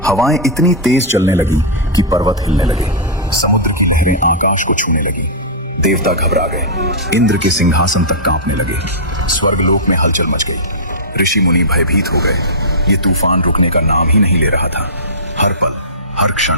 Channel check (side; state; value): both; normal; correlation -0.14